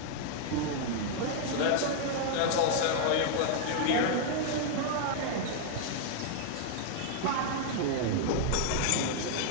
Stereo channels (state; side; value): different; both; correlation -0.01